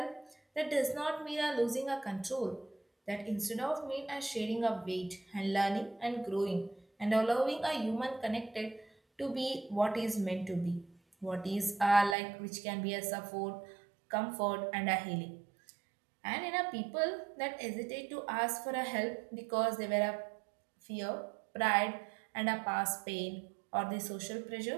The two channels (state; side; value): drops out; left; at 12.2 s